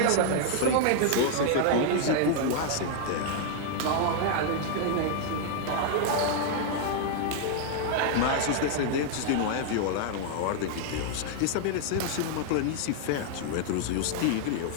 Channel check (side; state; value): both; different; correlation 0.00